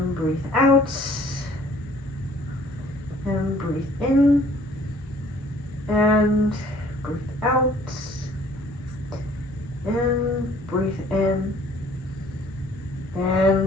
breathe out, and breathe in and breathe out, and breathe in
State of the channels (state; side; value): normal; both; correlation 0.56